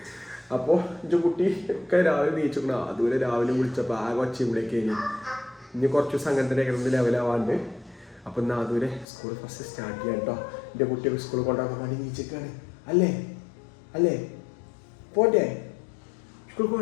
അപ്പോൾ എൻ്റെ കുട്ടി ഒക്കെ രാവിലെ നീച്ചിക്കണം. ആദുവിനെ രാവിലെ വിളിച്ചപ്പോൾ ആകെ ഒച്ചയിലേക്ക് കഴിഞ്ഞു. ഇനി കുറച്ച് ദിവസം അങ്ങനെ തന്നെ കിടന്ന് ലെവലാവാണ്ട്. അപ്പോൾ ഇന്ന് ആദുവിനെ സ്കൂൾ ഫസ്റ്റ് സ്റ്റാർട്ട് ചെയ്യാം കേട്ടോ. എൻ്റെ കുട്ടിയൊക്കെ സ്കൂളിൽ കൊണ്ടുപോകാൻ വേണ്ടി നീച്ചിക്കാണ്. അല്ലേ പോണ്ടേ സ്കൂളിൽ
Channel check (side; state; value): right; drops out; at 9.1 s